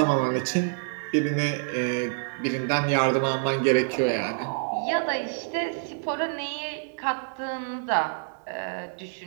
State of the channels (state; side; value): silent; left; digital silence